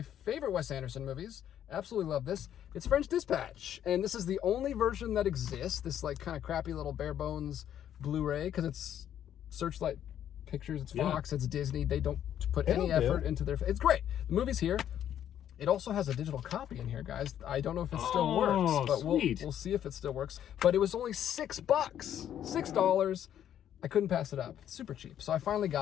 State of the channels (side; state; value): right; quieter; 10.3 dB